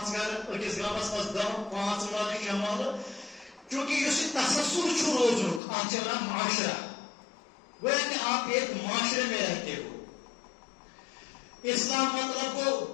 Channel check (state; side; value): drops out; right; at 5.6 s